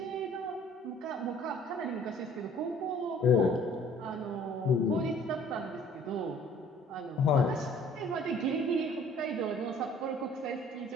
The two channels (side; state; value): both; normal; correlation 0.54